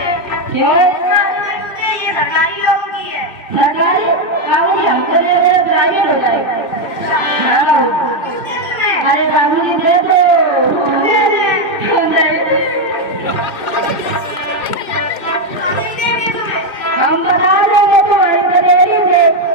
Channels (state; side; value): late; right; 2.0 ms